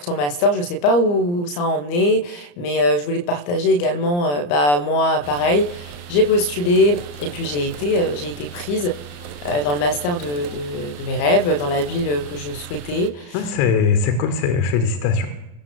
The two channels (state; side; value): late; right; 34 ms